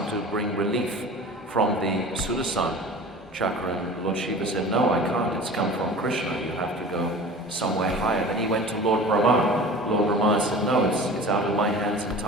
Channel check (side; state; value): both; normal; correlation 0.39